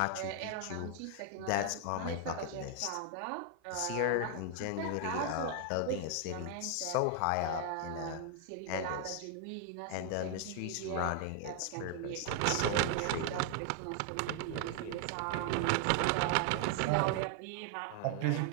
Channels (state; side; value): different; both; correlation 0.00